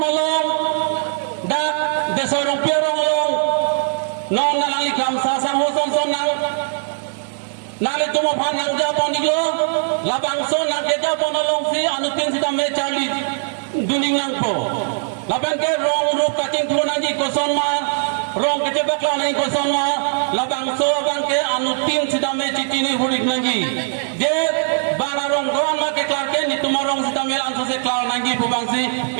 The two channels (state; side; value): silent; left; digital silence